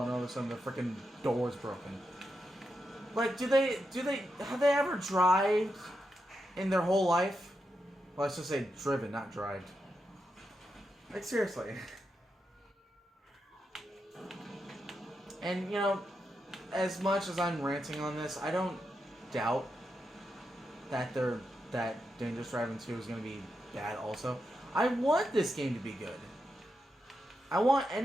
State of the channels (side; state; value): both; normal; correlation 0.86